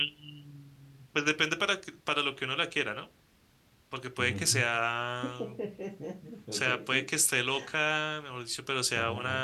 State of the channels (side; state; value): both; identical; correlation 1.00